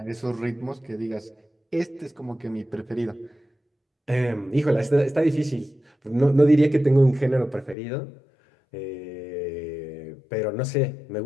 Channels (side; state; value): right; drops out; at 7.8 s